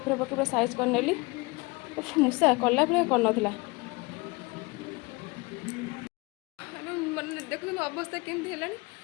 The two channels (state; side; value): quieter; right; 26.0 dB